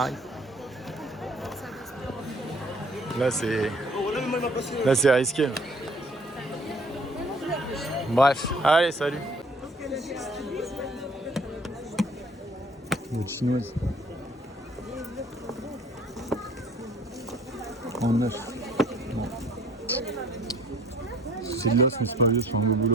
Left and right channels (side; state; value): both; normal; correlation 0.55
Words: Là c'est risqué. Bref, allez, salut. Une chinoise. En neuf. Bon. C'est de l'os, mais c'est pas vieux, c'est un beau